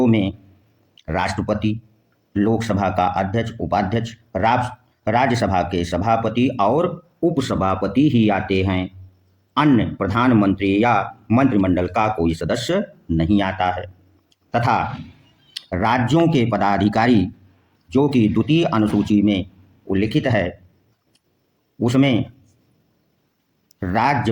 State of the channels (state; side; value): identical; both; correlation 1.00